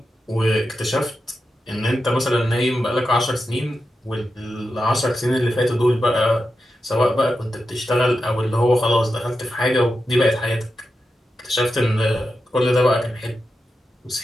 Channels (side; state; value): both; normal; correlation 0.89